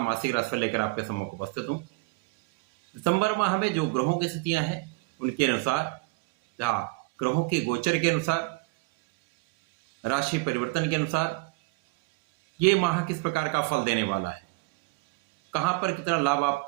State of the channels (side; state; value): left; quieter; 24.8 dB